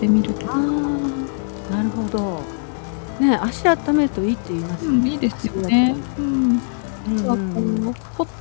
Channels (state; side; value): silent; right; digital silence